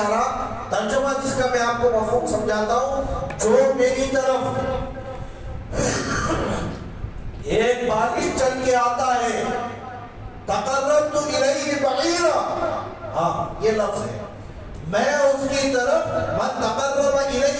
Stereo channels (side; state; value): both; identical; correlation 1.00